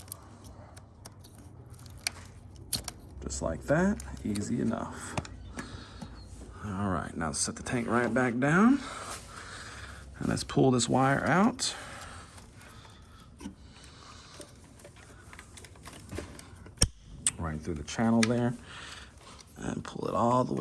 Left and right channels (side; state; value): both; identical; correlation 1.00